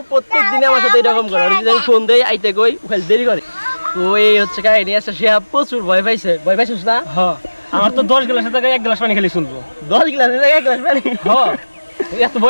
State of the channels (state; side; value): inverted; both; correlation -1.00